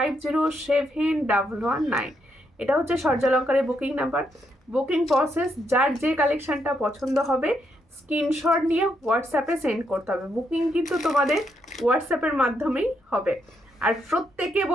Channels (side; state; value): both; normal; correlation 0.78